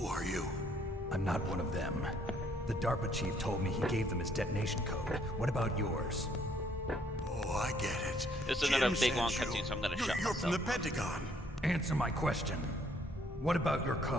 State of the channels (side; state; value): both; normal; correlation 0.66